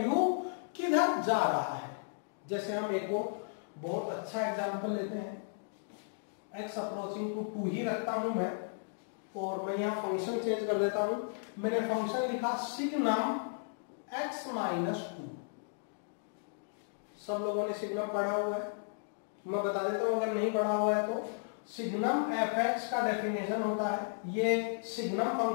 किधर जा रहा है। जैसे हम एक और बहुत अच्छा एग्जांपल लेते हैं, x अप्रोचिंग टू 2 ही रखता हूं मैं, और मैं यहां फंक्शन चेंज कर देता हूं। मैंने फंक्शन लिखा सिग्नम x माइनस 2। सब लोगों ने सिग्नम पढ़ा हुआ है, मैं बता देता हूं अगर नहीं पढ़ा हुआ है तो। सिग्नम fx का डेफिनेशन होता है, ये सिग्नम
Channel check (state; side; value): silent; right; digital silence